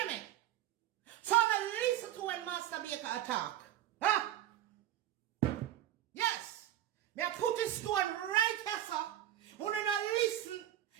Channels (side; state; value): left; quieter; 12.5 dB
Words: me? So I listen to when Master Baker attack. Huh? Yes. Me I put this stone right here, sir. When you listen,